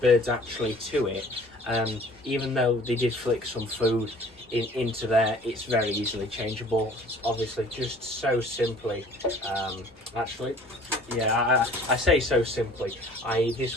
actually to it. Even though they did flick some food into there, it's very easily changeable. It's obviously just so simply. Actually, yeah, I say so simply.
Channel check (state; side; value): normal; both; correlation 0.50